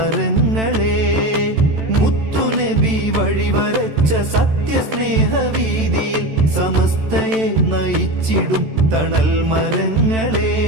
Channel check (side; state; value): left; late; 14 ms